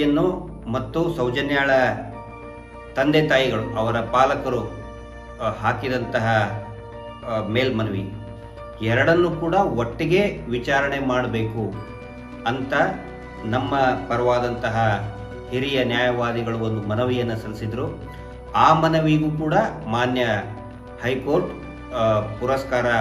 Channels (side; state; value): both; identical; correlation 1.00